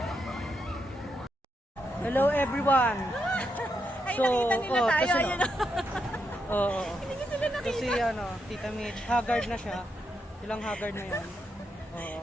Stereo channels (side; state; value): both; normal; correlation 0.82